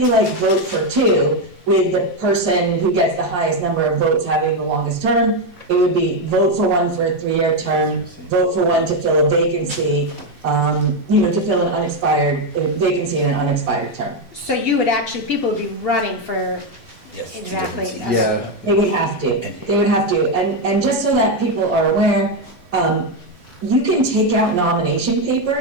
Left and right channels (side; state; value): both; normal; correlation 0.06